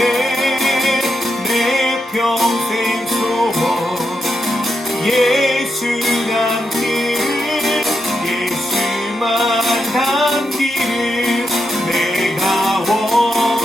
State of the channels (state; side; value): normal; both; correlation 0.84